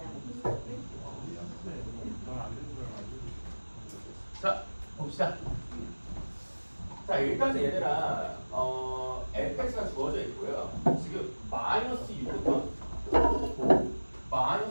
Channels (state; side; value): inverted; both; correlation -1.00